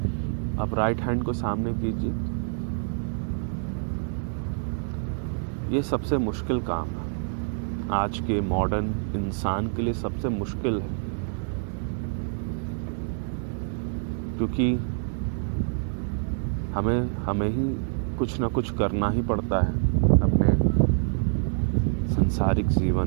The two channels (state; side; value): silent; left; digital silence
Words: अब राइट हैंड को सामने कीजिए। ये सबसे मुश्किल काम है, आज के मॉडर्न इंसान के लिए सबसे मुश्किल है, क्योंकि हमें ही कुछ ना कुछ करना ही पड़ता है अपने सांसारिक